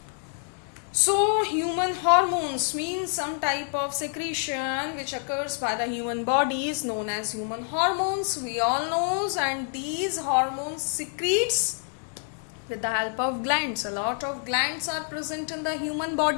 So human hormones means some type of secretion which occurs by the human body is known as human hormones, we all knows, and these hormones secretes with the help of glands. A lot of glands are present in the human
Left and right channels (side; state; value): right; silent; 60 dB below the other